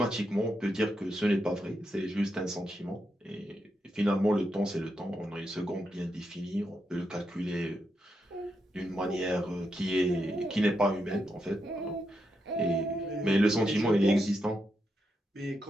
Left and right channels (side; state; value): both; normal; correlation 0.83